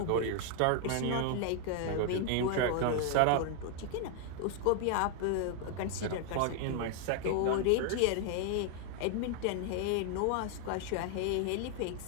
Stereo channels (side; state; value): both; different; correlation 0.00